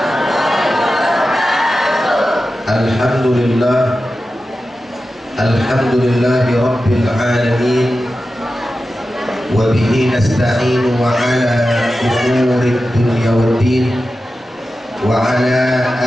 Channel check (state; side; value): normal; both; correlation 0.93